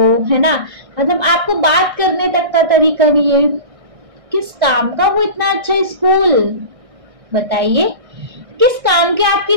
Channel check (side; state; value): left; late; 1.6 ms